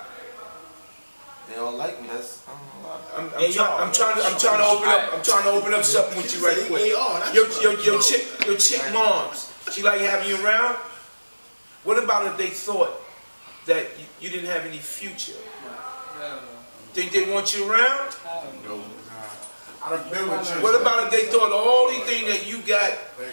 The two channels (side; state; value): both; inverted; correlation -1.00